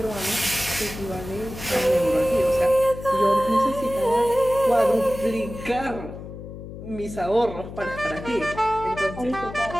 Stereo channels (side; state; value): left; noise; hum, 12 dB below the sound